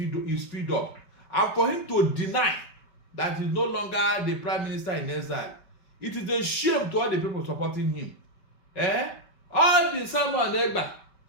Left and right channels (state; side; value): late; right; 5.2 ms